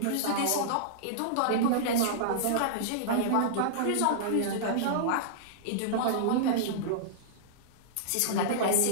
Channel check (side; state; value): both; different; correlation -0.02